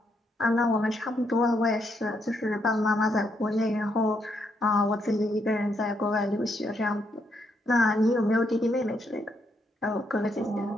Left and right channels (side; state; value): both; normal; correlation 0.76